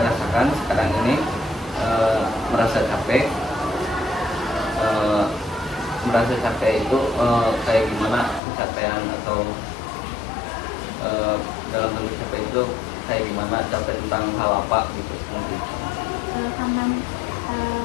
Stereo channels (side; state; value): right; drops out; at 8.4 s